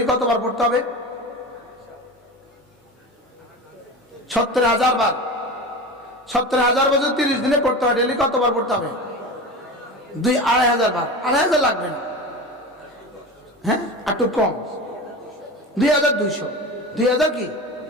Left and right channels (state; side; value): normal; both; correlation 0.29